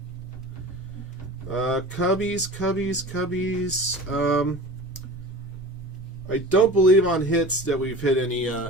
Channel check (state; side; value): normal; both; correlation 0.36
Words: Cubbies. I don't believe on hits that we've hit any